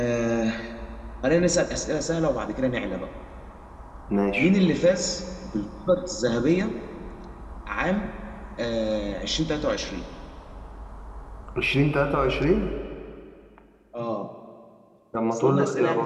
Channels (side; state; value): both; identical; correlation 1.00